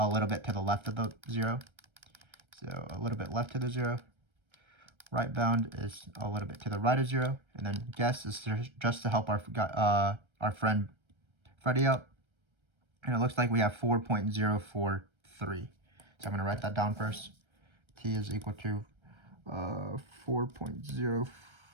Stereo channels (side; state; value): left; late; 1.3 ms